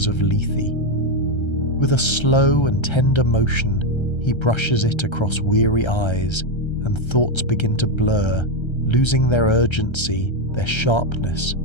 of Lethe. With a slow and tender motion, he brushes it across weary eyes, and thoughts begin to blur, losing their urgency, their sharpness,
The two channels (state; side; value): late; right; 1.3 ms